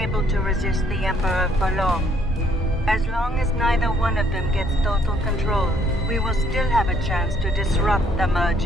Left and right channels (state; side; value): normal; both; correlation 0.66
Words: able to resist the Emperor for long. As long as neither one of them gets total control, we will still have a chance to disrupt the